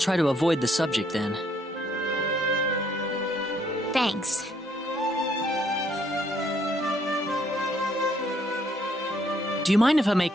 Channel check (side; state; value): both; normal; correlation 0.68